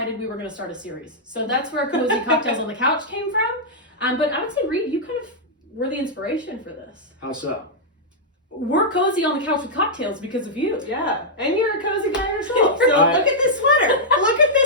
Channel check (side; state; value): both; normal; correlation -0.08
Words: we were going to start a series. So that's where Cozy Cocktails on the Couch came from. But I would say, Reed, you kind of were the inspiration for this. How so? We're cozy on the couch with cocktails because of you. Yeah, and you're a cozy guy yourself. So look at this sweater. Look at